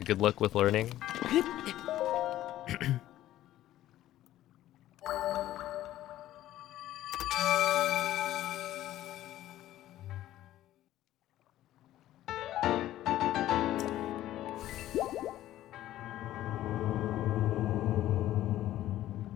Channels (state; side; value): quieter; right; 13.8 dB